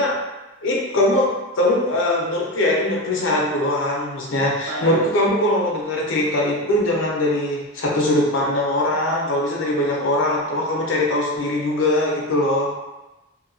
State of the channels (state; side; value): normal; both; correlation 0.18